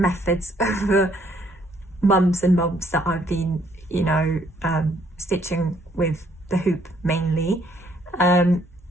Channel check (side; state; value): both; normal; correlation 0.66